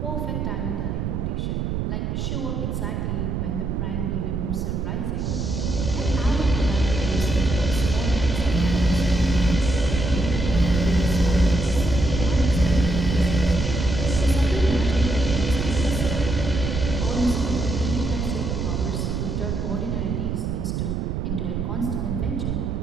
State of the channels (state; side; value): noise; right; rumble, 2 dB below the sound